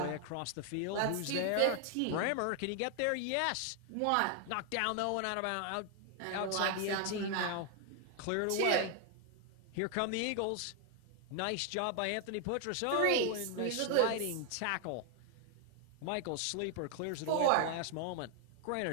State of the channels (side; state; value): both; different; correlation 0.00